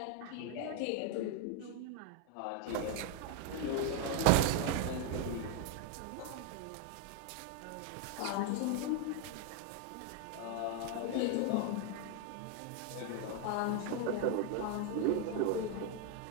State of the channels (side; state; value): both; different; correlation 0.00